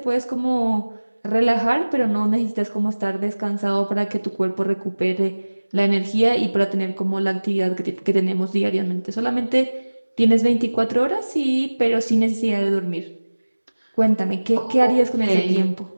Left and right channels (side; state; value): both; inverted; correlation -1.00